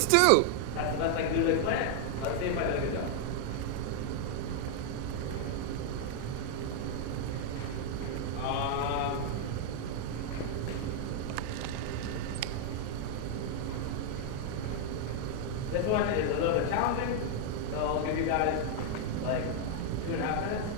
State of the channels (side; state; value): both; different; correlation 0.00